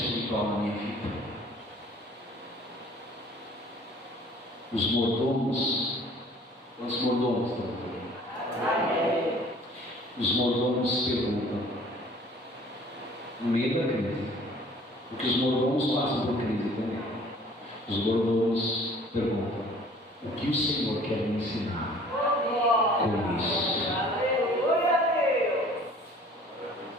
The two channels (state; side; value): normal; both; correlation 0.51